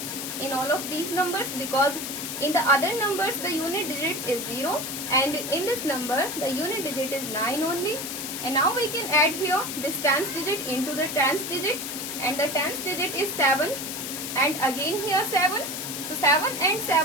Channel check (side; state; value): left; noise; hiss, 5 dB below the sound